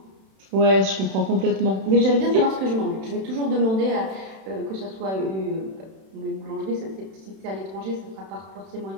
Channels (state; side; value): late; left; 31 ms